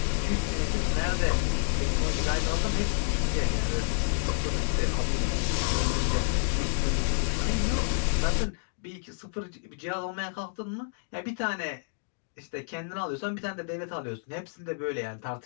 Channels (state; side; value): silent; right; digital silence